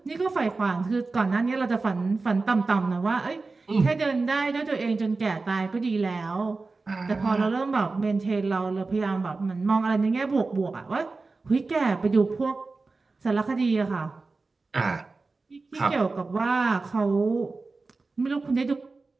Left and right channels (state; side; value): quieter; left; 3.8 dB